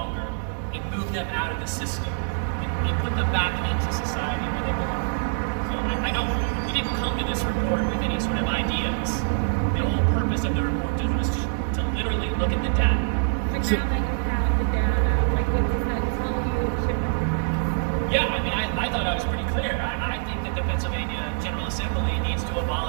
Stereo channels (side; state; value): left; silent; 57 dB below the other